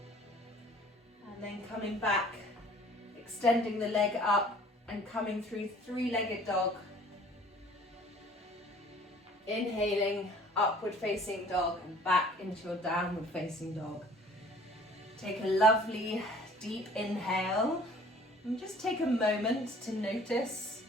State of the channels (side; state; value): both; normal; correlation 0.51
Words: And then coming back, extending the leg up and coming through three-legged dog. Inhaling, upward facing dog, and back into your downward facing dog. Take a lovely deep inhale and just take a moment to notice